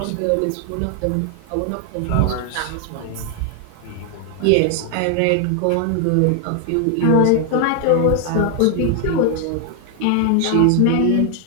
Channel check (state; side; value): different; both; correlation 0.00